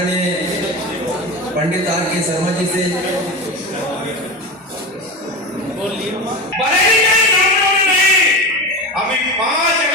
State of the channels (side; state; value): both; normal; correlation 0.24